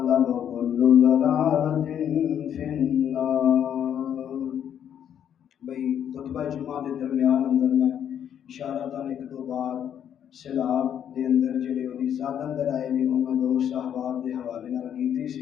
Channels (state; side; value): quieter; right; 9.3 dB